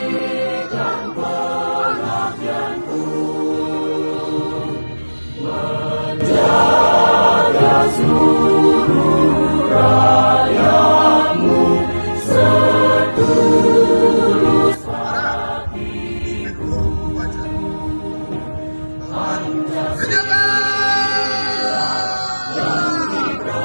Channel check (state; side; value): inverted; both; correlation -1.00